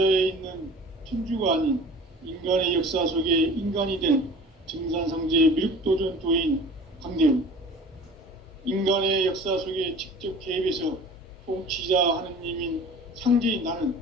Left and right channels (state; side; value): normal; both; correlation 0.43